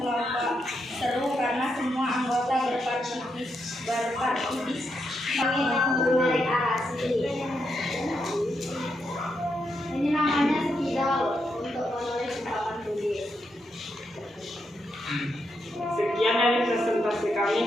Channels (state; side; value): normal; both; correlation 0.82